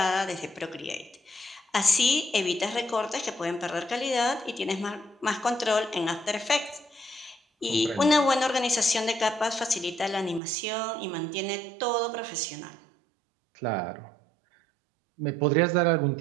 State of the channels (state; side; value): drops out; left; at 10.4 s